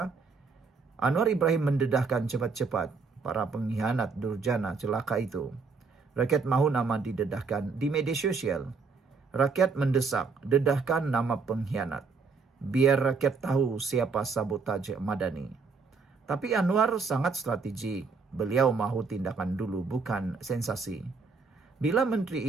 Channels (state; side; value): quieter; left; 4.8 dB